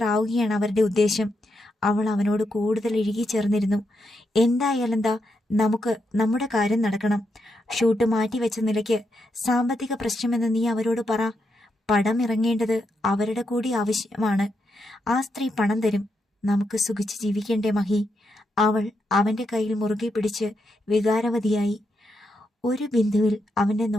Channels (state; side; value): normal; both; correlation 0.82